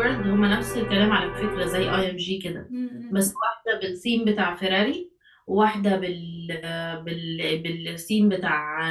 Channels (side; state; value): both; identical; correlation 1.00